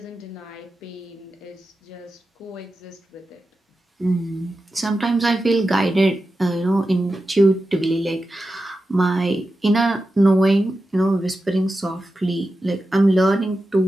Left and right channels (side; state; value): both; normal; correlation 0.91